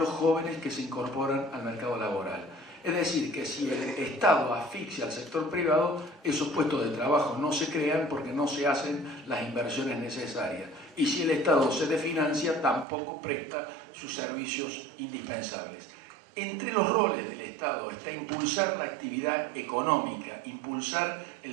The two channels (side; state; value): left; drops out; at 12.9 s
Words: jóvenes que se incorporan al mercado laboral. Es decir, que si el Estado asfixia al sector privado, esos puestos de trabajo no se crean porque no se hacen las inversiones necesarias. Y si el Estado se desfinancia, tampoco presta sus servicios indispensables. Entre los roles del Estado está impulsar la actividad económica, impulsar el